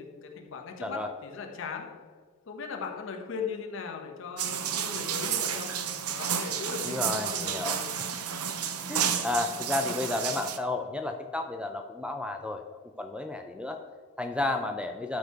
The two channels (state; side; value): normal; both; correlation 0.29